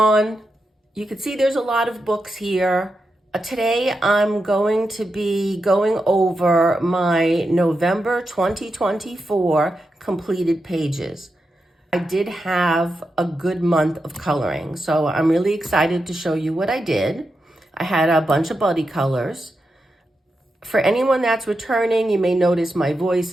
you can see there's a lot of books here. Today I'm going to be going over my November 2024 completed pages. I did have a good month of coloring, so I'm really excited to show you what I did. I had a bunch of buddy colors. For anyone that's returning, you may notice my voice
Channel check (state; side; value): normal; both; correlation 0.88